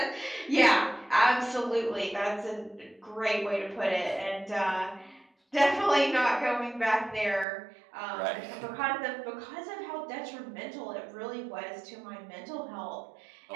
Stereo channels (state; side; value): drops out; left; at 7.5 s